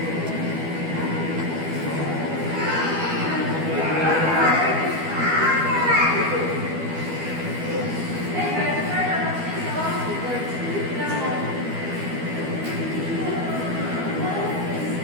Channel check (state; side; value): late; left; 12 ms